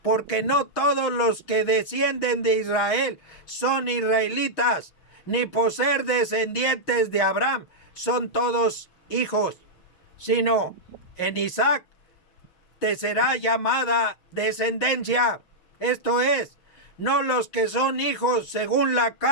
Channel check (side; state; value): right; late; 6.2 ms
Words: porque no todos los que descienden de Israel son israelitas, ni por ser descendientes de Abraham son todos hijos, sino en Isaac te será llamada descendencia. Esto es, no los que son hijos según la